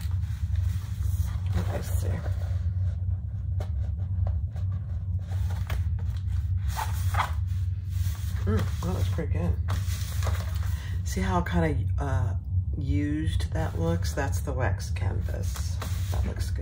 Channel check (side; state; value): both; identical; correlation 1.00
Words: Let's see. That looks pretty good. See how kind of used that looks? That's the wax canvas. That looks